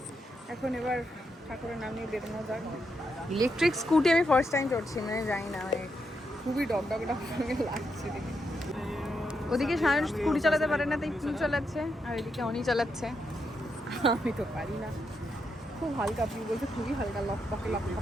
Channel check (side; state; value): both; normal; correlation 0.82